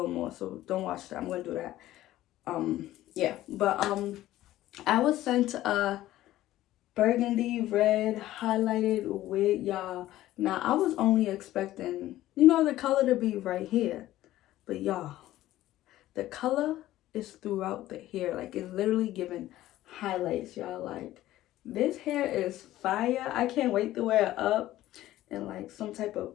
more, so don't watch that. I'm gonna do that. Yeah, but I was sent a burgundy red highlighted wig, y'all. Now I was only expecting, the color to be right here, but y'all, the color is throughout the hair. Like, it's literally giving highlights, y'all. Like, this hair is fire. I can't wait to wear it up and like some type of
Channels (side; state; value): right; quieter; 14.8 dB